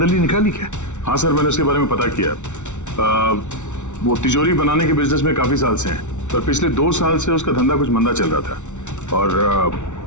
निकाली क्या? हाँ सर, मैंने उसके बारे में पता किया। वो तिजोरी बनाने के बिजनेस में काफी साल से हैं, पर पिछले 2 साल से उसका धंधा कुछ मंदा चल रहा था। और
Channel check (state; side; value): late; right; 0.84 ms